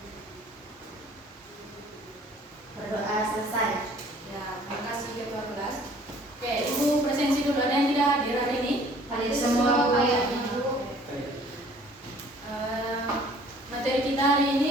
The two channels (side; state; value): both; normal; correlation 0.55